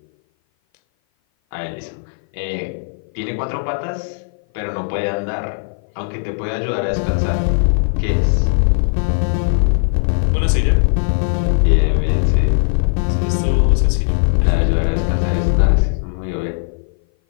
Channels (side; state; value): right; silent; 57 dB below the other